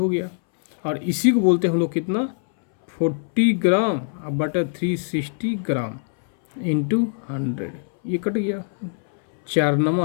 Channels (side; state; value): right; silent; 62 dB below the other